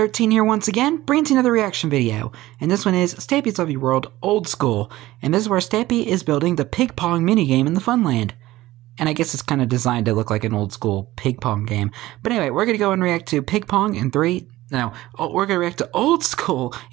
here once again, bringing you another reaction video. And this one is Stampy's Lovely World Old School. And this is where Stampy is building the pig pong minigame in the Funland. And I guess it's kind of designed to look like an old school pig pong game. But anyway, we're going to go and react to pig pong in we're going to react to old school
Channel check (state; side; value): quieter; left; 16.8 dB